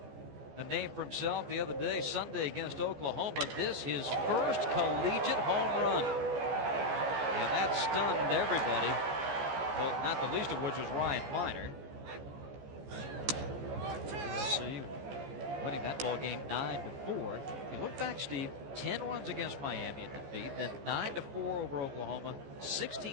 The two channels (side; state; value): left; late; 14 ms